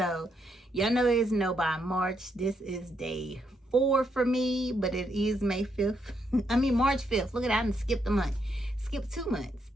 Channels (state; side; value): normal; both; correlation 0.77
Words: y'all know it's no by March. This is day 4 for me, but it is May 5th. I mean March 5th. Look at that, I skipped a month. Skipped 2 months.